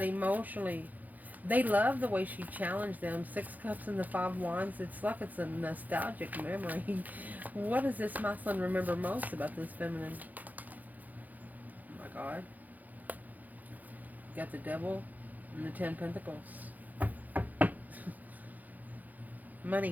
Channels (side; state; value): left; late; 0.081 ms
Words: emotionally? They love the way she challenged them. 6 cups and the 5 wands. It's like it's a nostalgic memory. What does this masculine remember most about this feminine? Oh my God. Got the devil and the 10 pentacles.